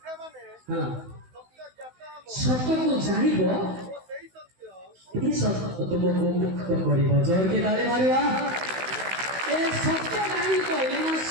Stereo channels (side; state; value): left; late; 16 ms